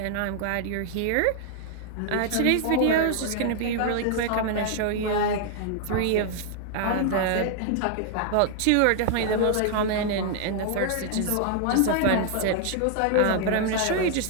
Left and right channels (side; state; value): both; different; correlation 0.00